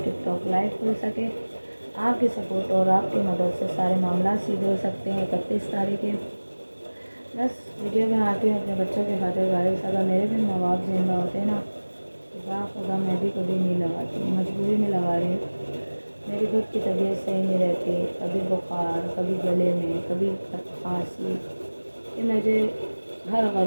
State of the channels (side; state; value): both; inverted; correlation -1.00